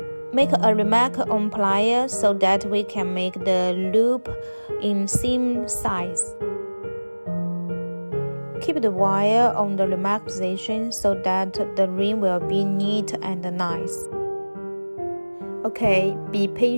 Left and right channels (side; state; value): both; inverted; correlation -1.00